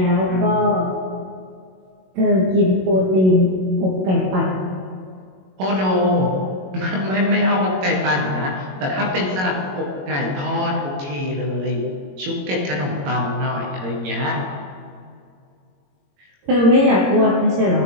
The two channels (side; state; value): left; late; 21 ms